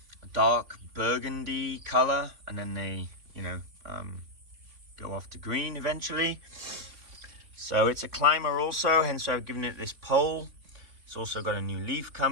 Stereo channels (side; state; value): left; late; 3.6 ms